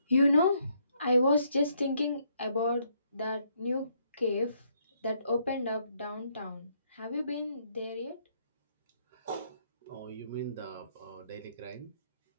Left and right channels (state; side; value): inverted; both; correlation -0.71